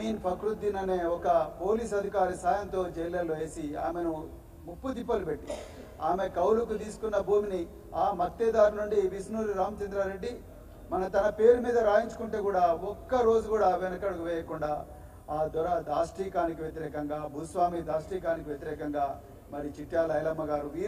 ఫక్రుద్దీన్ అనే ఒక పోలీస్ అధికారి సాయంతో జైళ్ళల్లో వేసి ఆమెను ముప్పు తిప్పలు పెట్టి ఆమె కౌలుకు తీసుకున్న భూమిని ఆ మత్తేదారు నుండి విష్ణూరి రామచంద్రారెడ్డి తన పేరు మీద రాయించుకుంటే కూడా ఒక్క రోజు కూడా వెనకడుగు వేయకుండా ఆ దొర దాష్టీకానికి వ్యతిరేకంగా, భూస్వామి దాష్టీకానికి వ్యతిరేకంగా మరి చిట్యాల ఐలమ్మ గారు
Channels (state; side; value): identical; both; correlation 1.00